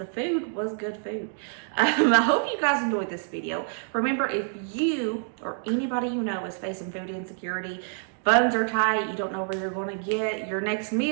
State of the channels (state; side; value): silent; left; 60 dB below the other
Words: food was good food. I hope you guys enjoyed this video. Remember, if you or anybody you know is facing food insecurity, funds are tight, you don't know where you're going to get your next